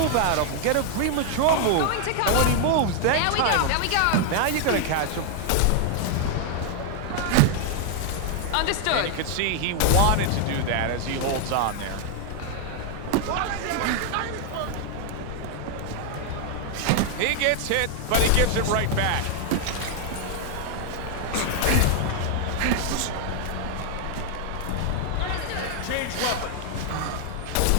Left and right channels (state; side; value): different; both; correlation 0.00